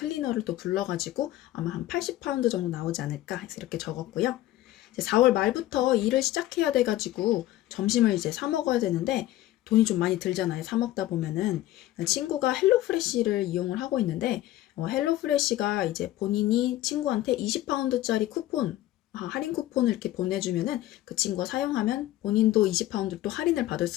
또 불러가지고 아마 한 80파운드 정도 나오지 않을까 해서 이렇게 적었고요. 이제 4월 말부터 일을 시작해야 돼가지고 점심을 이제 사 먹어야 되는데 돈이 좀 많이 들잖아요. 사 먹다 보면은. 친구가 헬로프레시를 이용을 하고 있는데 헬로프레시가 이제 본인이 친구한테 20파운드짜리 쿠폰, 할인 쿠폰을 이렇게 보내주면은 그 친구가 사용하면 본인도 20파운드 또 할인을 받을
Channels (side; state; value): right; quieter; 15.0 dB